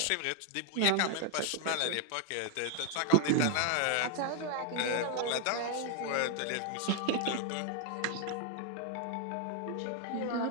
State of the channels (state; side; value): different; both; correlation 0.00